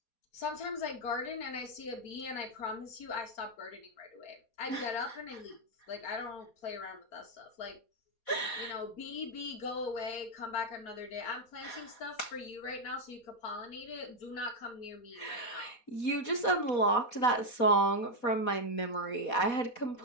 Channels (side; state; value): right; late; 4.1 ms